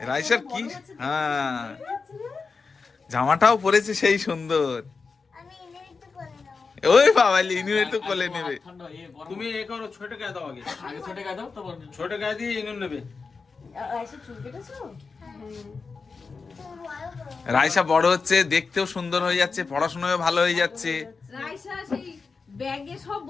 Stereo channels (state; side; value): quieter; right; 4.7 dB